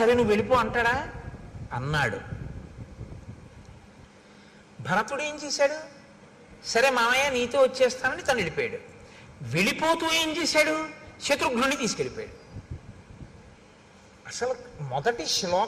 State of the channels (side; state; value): both; identical; correlation 1.00